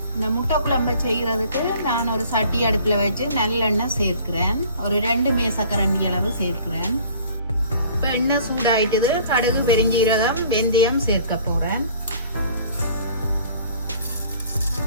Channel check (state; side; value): inverted; both; correlation -0.52